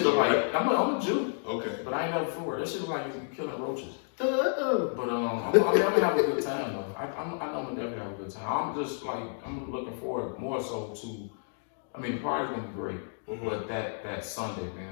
though, like, right? I'm a Jew. Okay. But I ain't never footwork. That shit look like you killing roaches. But I'm gonna have a good time though. I know I'm gonna definitely have a good time. I'm looking forward more so to. I mean, the party's gonna be great, but that Sunday,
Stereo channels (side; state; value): right; silent; digital silence